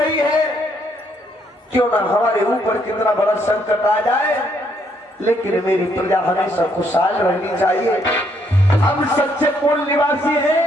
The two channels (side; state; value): both; normal; correlation 0.71